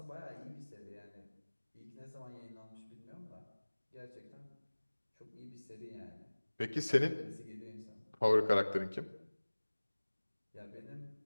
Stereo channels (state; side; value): inverted; both; correlation -1.00